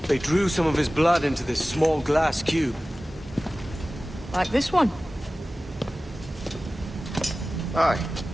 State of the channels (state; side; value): normal; both; correlation 0.96